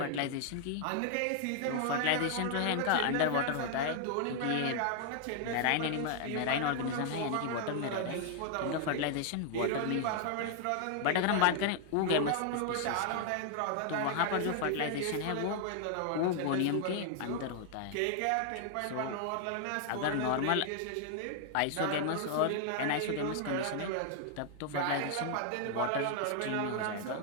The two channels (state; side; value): different; both; correlation 0.00